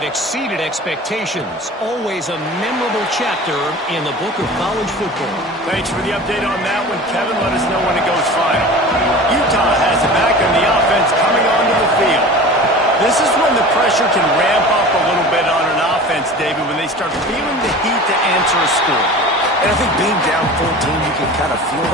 exceeded expectations. Always a memorable chapter in the book of college football. Thanks for the update on that one, Kevin. Let us know when it goes final. Utah has it back in the offense coming onto the field. This is when the pressure can ramp up a little bit on an offense, David, when they start feeling the heat to answer a score. And I think being down 14, you can kind of feel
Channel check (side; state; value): both; normal; correlation 0.37